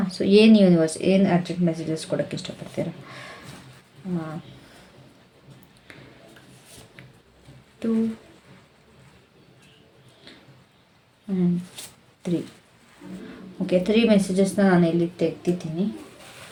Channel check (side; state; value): both; identical; correlation 1.00